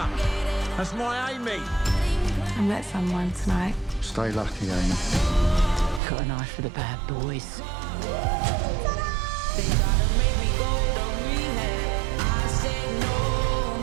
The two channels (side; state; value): left; drops out; at 6.0 s